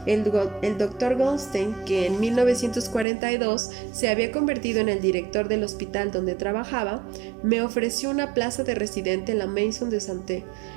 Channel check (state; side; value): drops out; left; at 3.1 s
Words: el Dr. Goldstein, que en 1942 se había convertido en el director del hospital donde trabajaba, me ofreció una plaza de residente en la Maison de Santé,